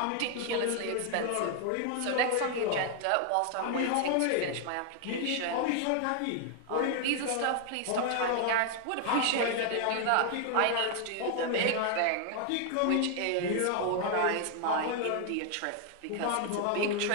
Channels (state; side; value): different; both; correlation 0.00